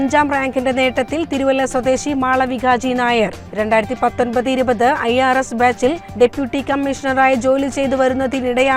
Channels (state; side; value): identical; both; correlation 1.00